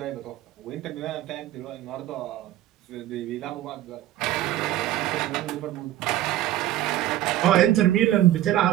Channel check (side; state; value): left; quieter; 13.6 dB